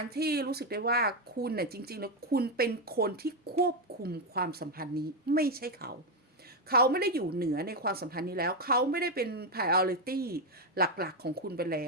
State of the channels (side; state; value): both; normal; correlation 0.05